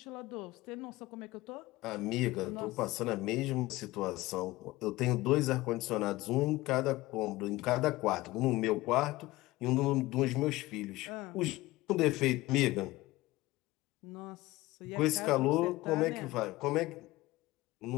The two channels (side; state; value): right; quieter; 19.0 dB